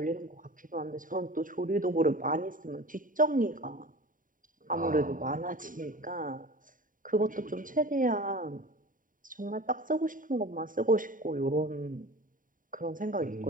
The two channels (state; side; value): late; left; 0.39 ms